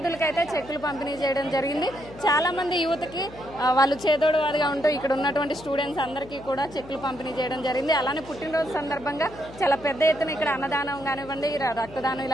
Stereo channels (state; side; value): noise; left; hum, 18 dB below the sound